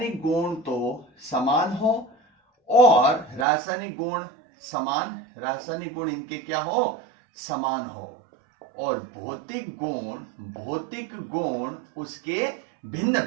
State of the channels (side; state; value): left; drops out; at 3.5 s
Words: गुण तो समान हो और रासायनिक गुण इनके क्या हो, समान हो, और भौतिक गुण उसके भिन्न